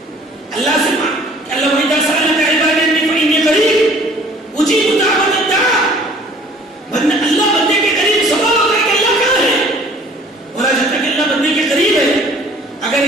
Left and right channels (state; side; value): normal; both; correlation 0.53